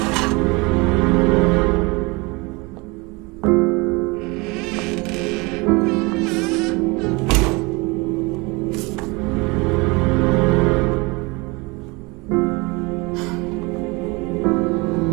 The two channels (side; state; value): left; quieter; 26.2 dB